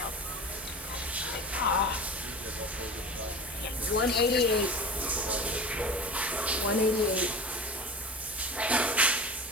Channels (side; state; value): both; normal; correlation 0.34